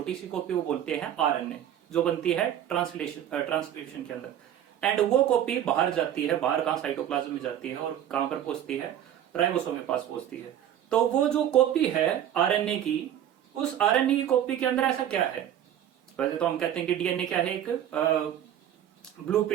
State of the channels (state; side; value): quieter; left; 10.7 dB